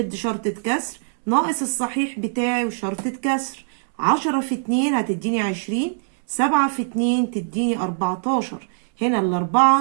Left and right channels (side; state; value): left; silent; digital silence